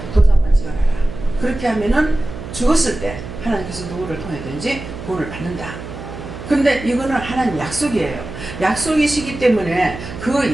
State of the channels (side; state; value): right; noise; hum, 11 dB below the sound